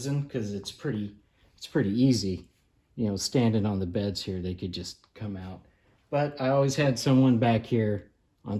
because it's pretty easy. You know, standing on the beds here, they could just come out. But I always had someone back here on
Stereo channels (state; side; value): identical; both; correlation 1.00